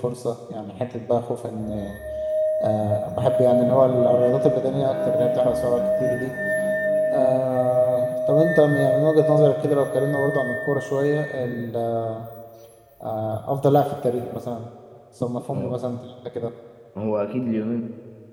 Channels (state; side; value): identical; both; correlation 1.00